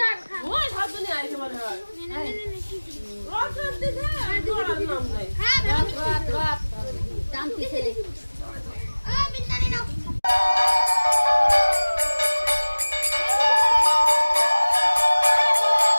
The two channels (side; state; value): both; inverted; correlation -1.00